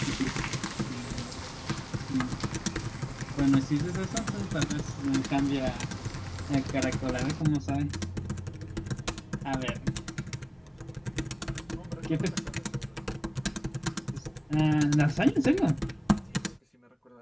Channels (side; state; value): both; identical; correlation 1.00